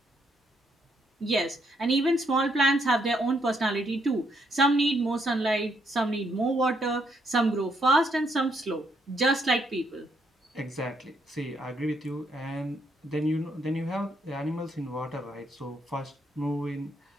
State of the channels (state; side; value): normal; both; correlation 0.74